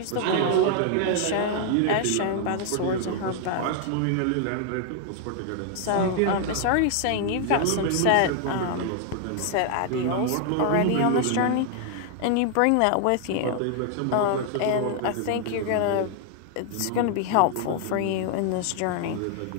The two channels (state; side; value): different; both; correlation 0.00